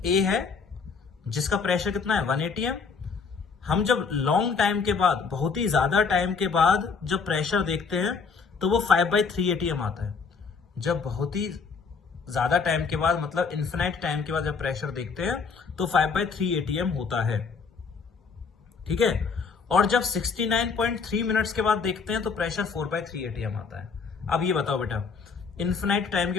ए है जिसका प्रेशर कितना है 1 atm। हम जब लॉन्ग टाइम के बाद, बहुत ही ज्यादा टाइम के बाद जब प्रेशर देखते हैं तो वो 5/3 atm आता है। जब बहुत ही ज्यादा टाइम के बाद, मतलब इन्फिनाइट टाइम के बाद जब प्रेशर देखते हैं तो 5/3 atm होता है, ठीक है। और जब 69.3 मिनट्स के बाद देखते हैं तो प्रेशर 4/3 atm आता है। अब ये बताओ बेटा, इन्फिनाइट टाइम के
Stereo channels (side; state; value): right; quieter; 5.3 dB